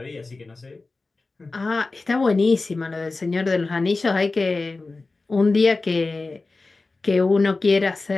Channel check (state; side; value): quieter; right; 3.6 dB